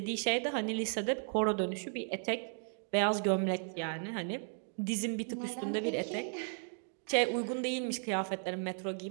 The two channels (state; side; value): silent; left; 54 dB below the other